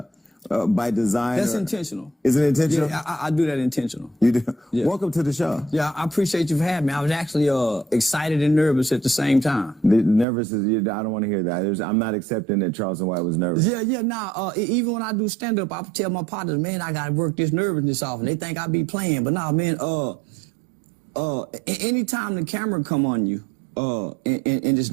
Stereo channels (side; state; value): left; drops out; at 10.2 s